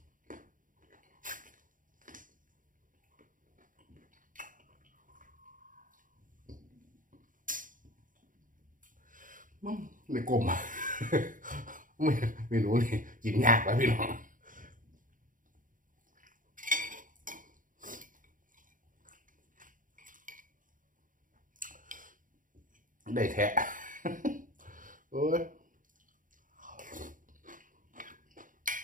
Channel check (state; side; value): late; left; 0.39 ms